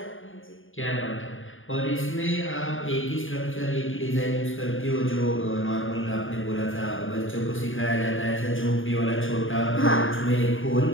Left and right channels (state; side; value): late; right; 0.58 ms